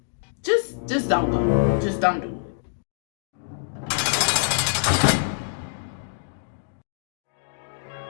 just don't go. Just don't do it.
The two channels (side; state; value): right; silent; digital silence